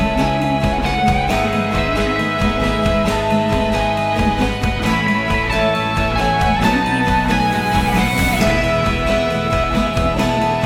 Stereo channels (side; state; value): both; identical; correlation 1.00